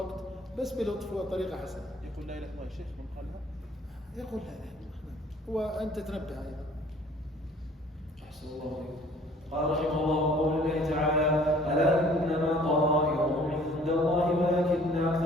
بس بلطف وطريقة حسنة. يقول لا إله إلا الله الشيخ من قالها؟ يقول لا إله إلا الله، وأنت تنبه أيضا. أحسن الله عليكم. قال رحمه الله: قول الله تعالى: ألا إنما طائرهم عند الله ولكن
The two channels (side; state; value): both; normal; correlation 0.54